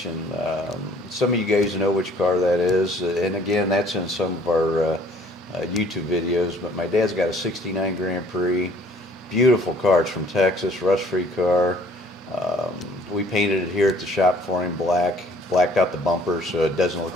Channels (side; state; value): both; normal; correlation 0.57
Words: Some of you guys know which car that is, and again, that's in some of our YouTube videos. But my dad's got a '69 Grand Prix, beautiful car. It's from Texas, rust-free car. We painted it here at the shop for him black. blacked out the bumpers so it doesn't look